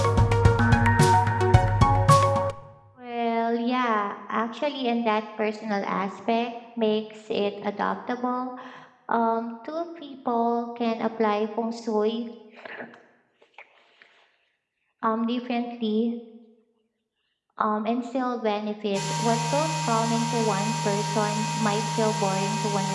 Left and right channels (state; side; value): identical; both; correlation 1.00